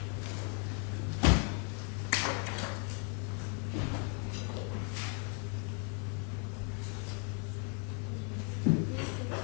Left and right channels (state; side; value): quieter; right; 39.2 dB